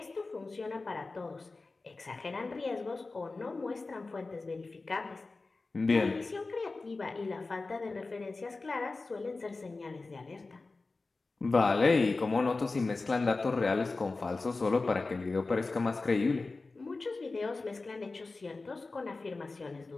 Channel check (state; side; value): quieter; right; 3.6 dB